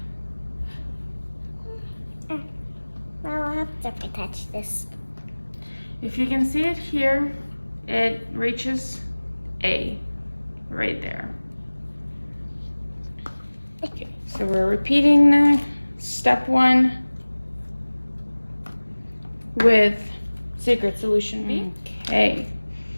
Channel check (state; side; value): inverted; both; correlation -1.00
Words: I'll have to touch this. If you can see it here, it reaches A, right there. Okay, so we're repeating the step 1 with secret solution B. Okay,